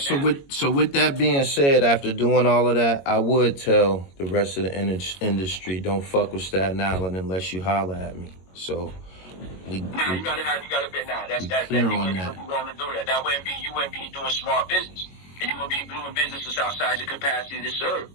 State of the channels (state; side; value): late; right; 22 ms